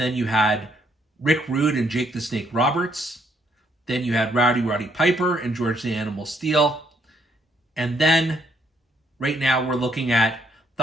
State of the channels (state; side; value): normal; both; correlation 0.71